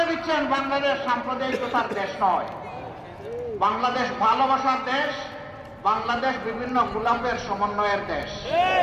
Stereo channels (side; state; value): both; identical; correlation 1.00